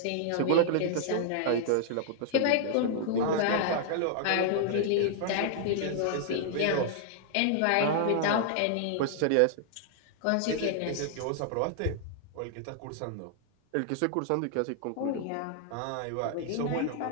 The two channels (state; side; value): different; both; correlation -0.01